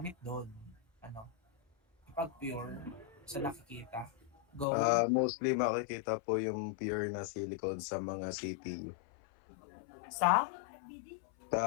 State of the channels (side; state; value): right; drops out; at 4.7 s